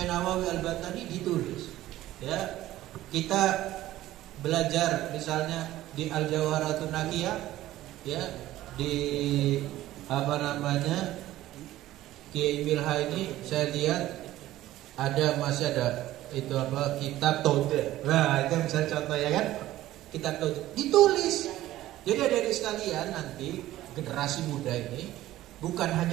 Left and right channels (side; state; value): left; quieter; 15.0 dB